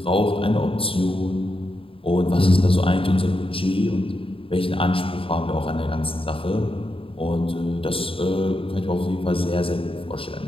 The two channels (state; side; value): late; right; 0.26 ms